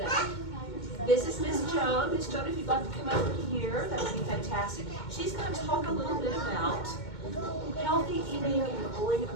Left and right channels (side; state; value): right; late; 2.2 ms